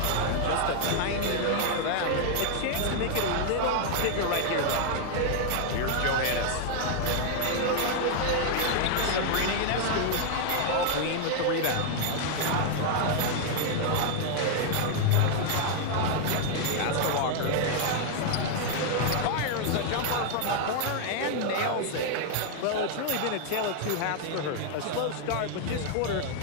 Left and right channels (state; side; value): different; both; correlation 0.00